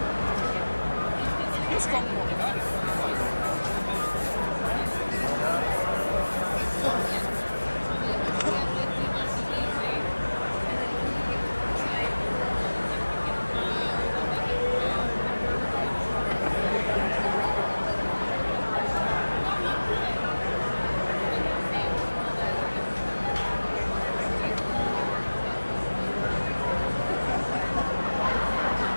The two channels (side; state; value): both; inverted; correlation -1.00